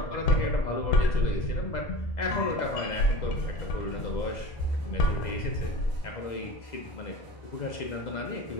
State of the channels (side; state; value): right; late; 2.0 ms